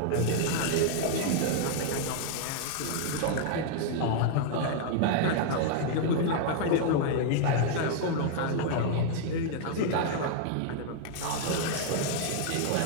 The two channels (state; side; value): different; both; correlation -0.01